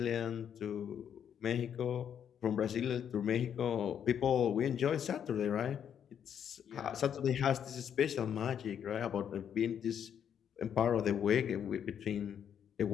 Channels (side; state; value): right; quieter; 8.7 dB